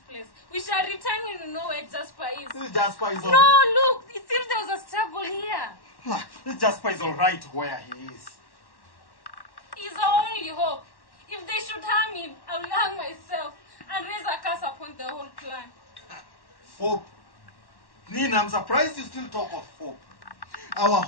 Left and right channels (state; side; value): late; right; 1.1 ms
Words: We shall return when we know where Jasper is. Jasper is all... No, look, it seems there was a struggle here. Jasper is all right where he is. He's our only hope. If they should harm him, I will hang myself and raise a curse upon the whole clan. Hope? Nina, I'm surprised you still talk of hope. Our